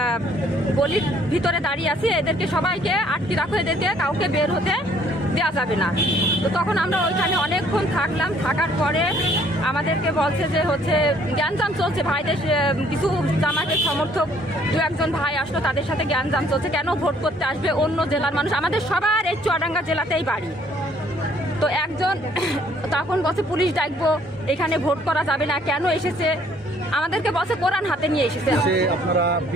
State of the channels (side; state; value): both; normal; correlation 0.62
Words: গলির ভিতরে দাঁড়িয়ে আছি, এদেরকে সবাইকে আটকে রাখো, এদেরকে কাউকে বের হতে দেওয়া যাবে না। তো তখন আমরা ওইখানে অনেকক্ষণ থাকলাম। থাকার পরে আমাদেরকে বলছে যে জ্ঞানজাম চলছে, ভাইদের কিছু জামাতের সমর্থক দু একজন ভাই আসলো, তাদের সাথে জ্ঞানজাম চলছে, কেন ভোট করতে আসবে অন্য জেলার মানুষ, আমাদের সবার এই চুয়াডাঙ্গা জেলাতেই বাড়ি। তো একজন তখন বলছে পুলিশ ডাকবো, এখানে ভোট করা যাবে না, কেন এসেছে আমাদেরকে বলছে কোরআন হাতে নিয়ে এসেছে। আপনারা